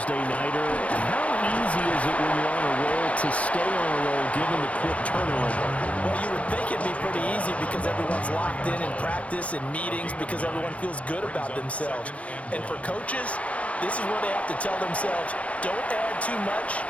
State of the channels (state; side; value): late; right; 0.065 ms